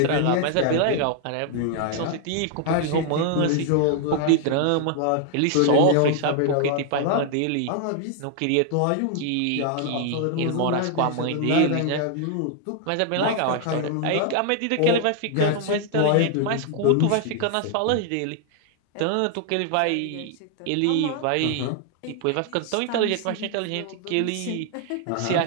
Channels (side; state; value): both; different; correlation 0.00